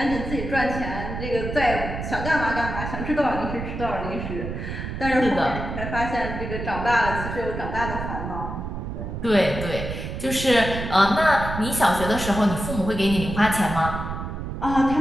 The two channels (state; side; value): noise; right; rumble, 6 dB below the sound